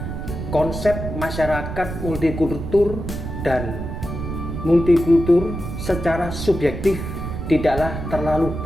Konsep masyarakat multikultur dan multikultur secara subjektif tidaklah terlalu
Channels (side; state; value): right; noise; rumble, 6 dB below the sound